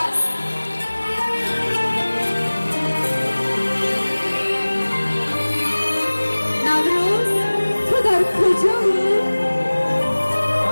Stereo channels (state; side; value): inverted; both; correlation -1.00